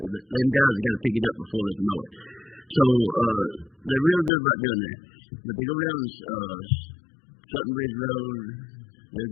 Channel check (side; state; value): right; drops out; at 4.3 s